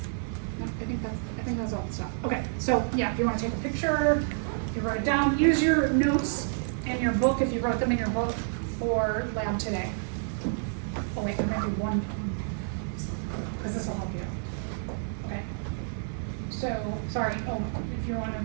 No, I think that's all the stuff. Okay, so yeah, if you want to take a picture, you write it down. Use your notes in your book if you wrote them in your book for lab today. Oh wait, I'm gonna do one because this will help you. Okay. So sorry. Oh, if you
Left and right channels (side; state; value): left; silent; 58 dB below the other